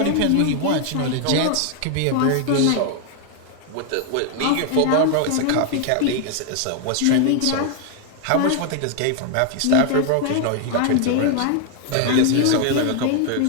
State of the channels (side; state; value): both; different; correlation 0.00